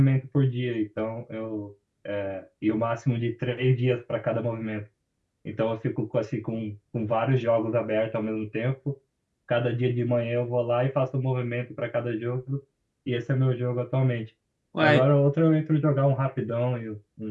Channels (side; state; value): both; identical; correlation 1.00